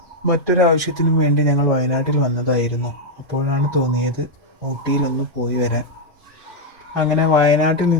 മറ്റൊരാവശ്യത്തിനും വേണ്ടി ഞങ്ങൾ വയനാട്ടിൽ വന്നതായിരുന്നു. അപ്പോഴാണ് തോന്നിയത് ഊട്ടിയിലൊന്ന് പോയി വരാൻ. അങ്ങനെ വയനാട്ടിൽ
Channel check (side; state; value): both; normal; correlation -0.01